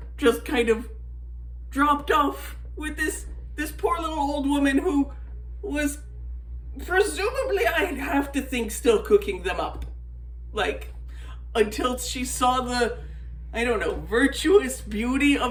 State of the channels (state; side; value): identical; both; correlation 1.00